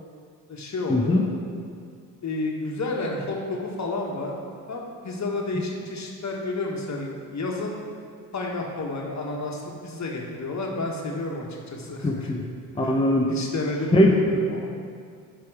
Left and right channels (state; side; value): normal; both; correlation 0.45